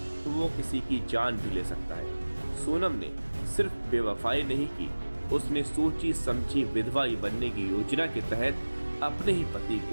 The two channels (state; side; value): inverted; both; correlation -1.00